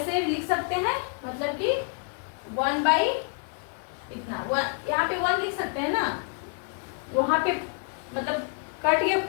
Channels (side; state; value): right; quieter; 39.4 dB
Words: लिख सकते हैं, मतलब कि 1 बाई इतना, यहाँ पे 1 लिख सकते हैं ना, वहां पे मतलब कट गया,